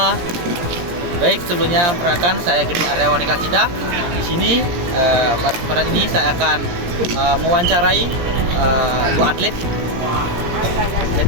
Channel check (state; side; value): late; left; 17 ms